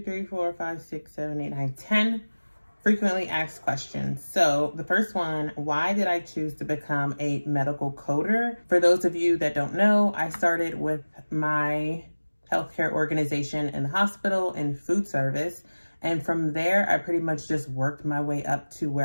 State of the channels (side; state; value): both; inverted; correlation -1.00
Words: 4, 5, 6, 7, 8, 9, 10 frequently asked questions. So the first one, why did I choose to become a medical coder? For those of you that don't know, I started with my healthcare organization in the hospital in food service. And from there, I pretty much just worked my way up to